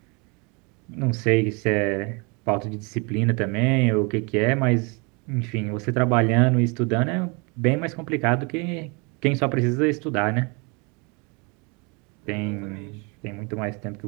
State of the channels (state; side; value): quieter; left; 31.1 dB